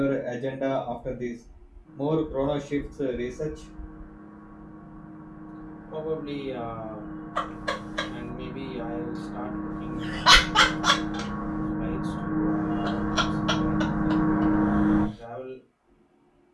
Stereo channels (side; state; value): both; identical; correlation 1.00